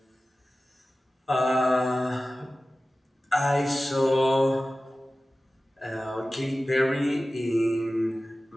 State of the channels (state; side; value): normal; both; correlation 0.96